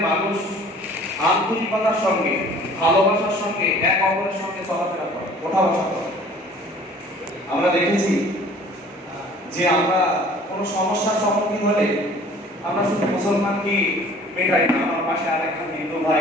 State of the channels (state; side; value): normal; both; correlation 0.50